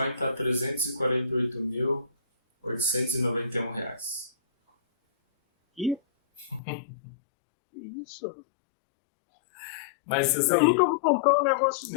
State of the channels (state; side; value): drops out; right; at 6.6 s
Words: está R$ 348.891 reais. Que? Isso? Mas assim, eu nunca vou comprar um negócio